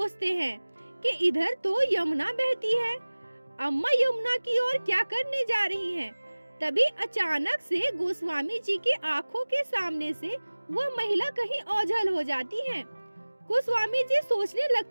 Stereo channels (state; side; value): inverted; both; correlation -1.00